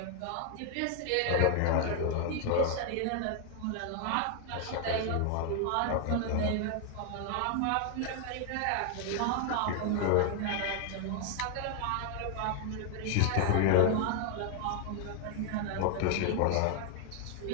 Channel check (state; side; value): different; both; correlation 0.00